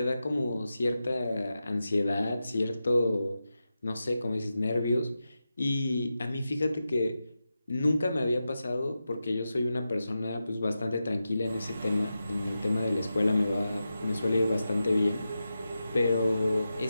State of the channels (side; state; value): both; inverted; correlation -0.91